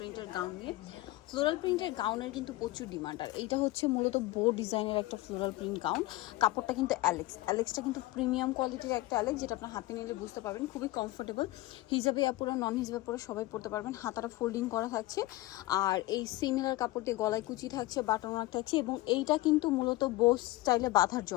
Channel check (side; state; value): right; quieter; 18.6 dB